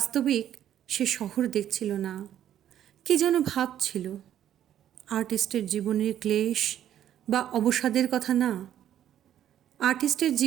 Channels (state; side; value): quieter; left; 10.9 dB